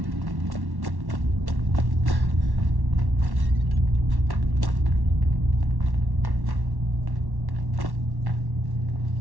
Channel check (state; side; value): late; left; 1.1 ms